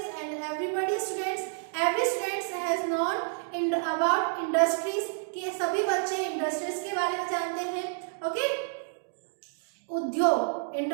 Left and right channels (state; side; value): silent; left; digital silence